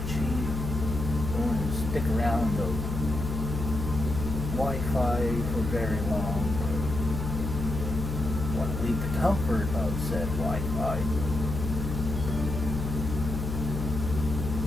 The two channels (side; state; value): left; noise; hum, 4 dB below the sound